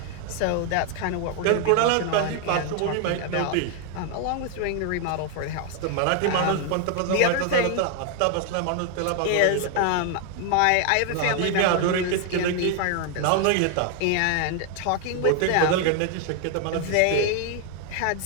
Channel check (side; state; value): both; different; correlation 0.00